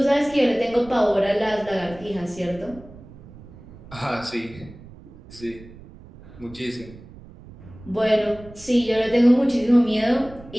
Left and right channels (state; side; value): noise; right; rumble, 19 dB below the sound